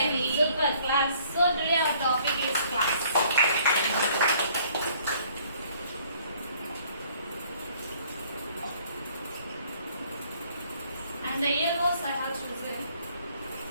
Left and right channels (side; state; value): both; inverted; correlation -0.60